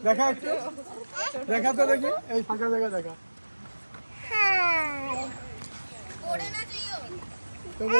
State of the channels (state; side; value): inverted; both; correlation -1.00